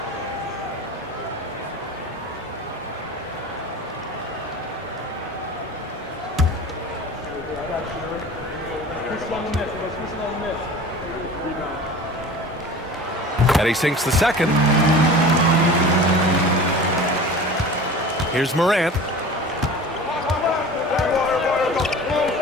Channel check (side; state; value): both; normal; correlation 0.38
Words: And he sinks the second. Here's Morant.